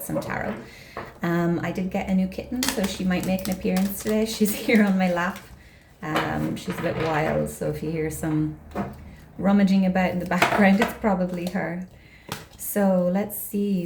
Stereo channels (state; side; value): identical; both; correlation 1.00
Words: some tarot. I did get a new kitten, so she might make an appearance today. She's here on my lap. She's a bit wild, so if you hear some rummaging about in the background, it's probably her. So let's